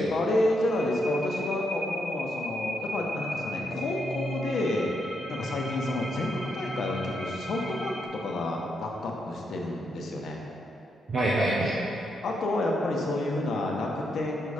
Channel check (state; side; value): normal; both; correlation 0.80